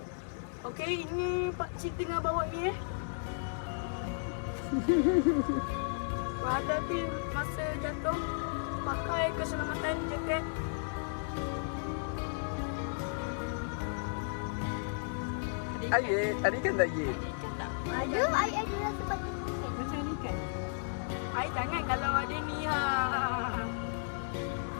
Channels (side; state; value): right; silent; digital silence